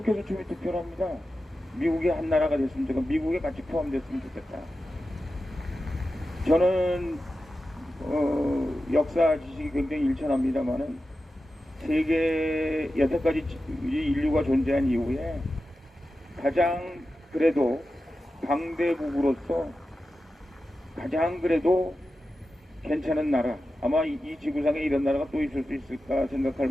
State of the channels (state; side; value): normal; both; correlation 0.92